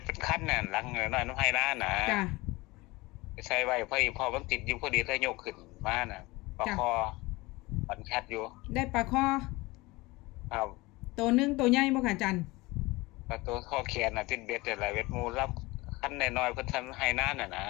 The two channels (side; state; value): right; quieter; 22.1 dB